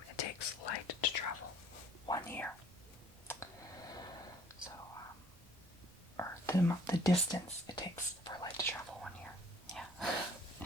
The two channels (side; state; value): both; normal; correlation 0.57